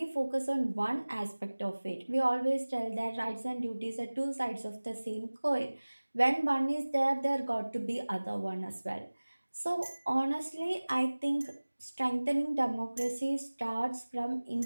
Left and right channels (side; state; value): both; inverted; correlation -1.00